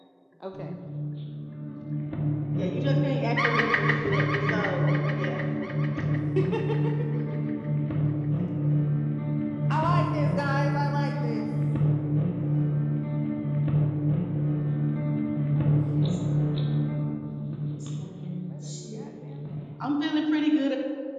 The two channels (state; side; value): identical; both; correlation 1.00